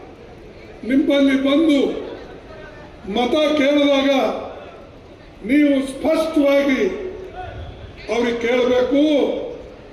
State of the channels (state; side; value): identical; both; correlation 1.00